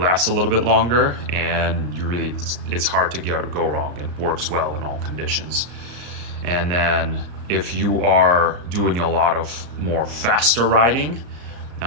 a little bit longer, and it's hard to go wrong. It works well in all conditions. And then if you are doing a lot of more faster riding,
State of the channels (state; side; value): late; left; 34 ms